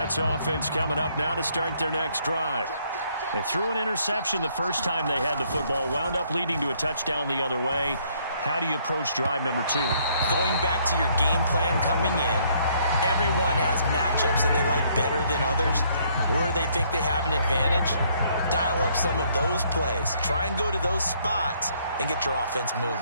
offense coming up now to start their next drive. They threw an interception the first time they had the football, wound up leading to a touchdown the other way. How do you approach drive number 2? Going back to your game plan coming in, everyone has matchups that they like better than others. Where they think they have an advantage, dial up some of those plays. Try and go to those spots and get your offense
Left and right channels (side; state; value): both; inverted; correlation -0.67